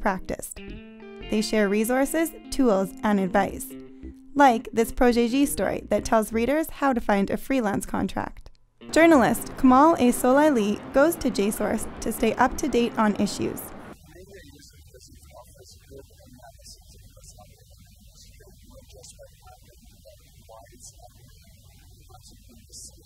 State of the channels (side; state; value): both; identical; correlation 1.00